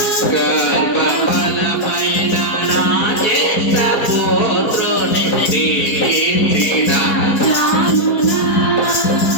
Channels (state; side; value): late; right; 4.5 ms